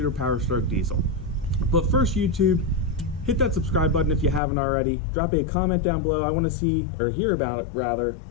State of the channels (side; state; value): right; drops out; at 4.4 s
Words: Powerstroke diesel. But first YouTube, hit that subscribe button if you haven't already. Drop a comment down below. I want to see, or hear about it rather,